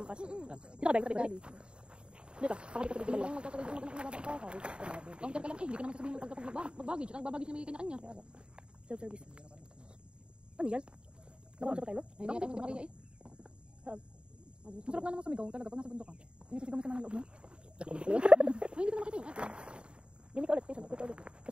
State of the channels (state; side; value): late; left; 0.053 ms